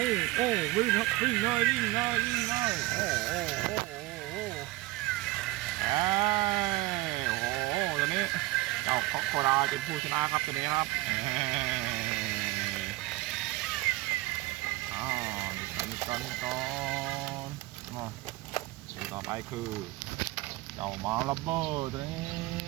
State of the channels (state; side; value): quieter; left; 19.3 dB